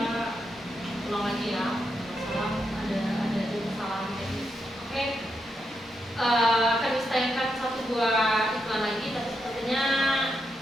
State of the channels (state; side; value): normal; both; correlation 0.83